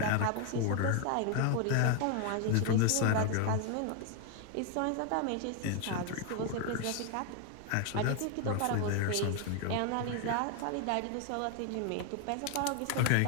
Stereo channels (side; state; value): both; different; correlation 0.01